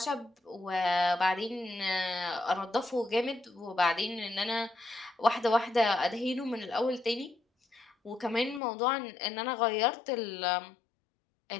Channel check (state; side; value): drops out; right; at 8.6 s